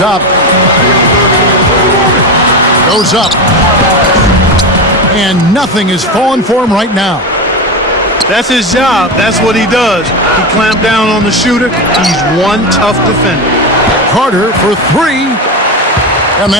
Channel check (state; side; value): normal; both; correlation 0.18